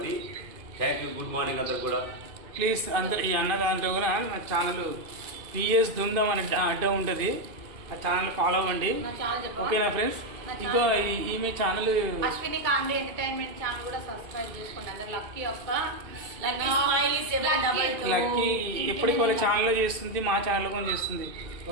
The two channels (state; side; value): late; left; 2.5 ms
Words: థ్యాంక్ యూ, గుడ్ మార్నింగ్ అందరు కూడా. ప్లీజ్ అందరు ఈ అన్న దాంట్లో కూడా నా ఛానల్ పిఎస్ ధూమ్ధామ్ అనే అడ్డం ఉంటుంది, ఆ ఛానల్ ఫాలో అవ్వండి. ఓకేనా ఫ్రెండ్స్? ఇంకో ఈమె channel Ashwini comedy entertainment channel కూడా సబ్స్క్రైబ్ చేసుకోండి అందరు. లక్కీ యొక్క లక్కీ ఎప్పటికి వాళ్ళ ఛానల్లో చేస్తుంది, మా ఛానల్లో కూడా చేస్తుంది.